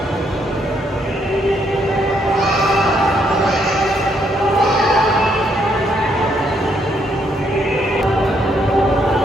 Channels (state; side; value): normal; both; correlation 0.73